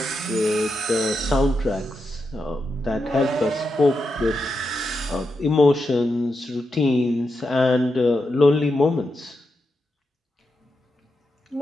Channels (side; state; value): both; normal; correlation 0.86